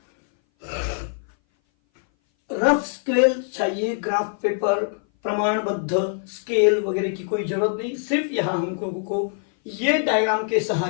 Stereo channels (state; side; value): silent; right; 59 dB below the other